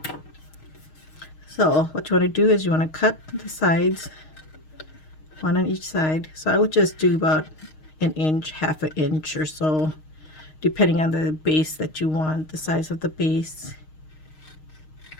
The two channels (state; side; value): late; right; 6.4 ms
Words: So what you want to do is you want to cut the sides, one on each side. So I would just do about an inch, half an inch or so, depending on the base that you want, the size of the base.